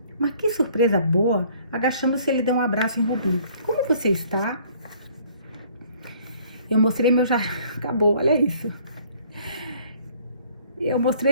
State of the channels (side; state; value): both; inverted; correlation -0.58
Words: Mas que surpresa boa! Agachando-se, ele deu um abraço em Ruby. Como você está? Eu mostrei meu jardim... Acabou, olha isso. Eu